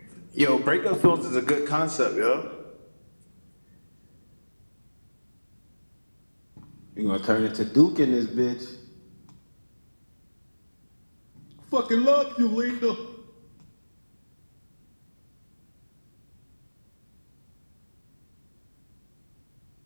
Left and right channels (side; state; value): both; inverted; correlation -1.00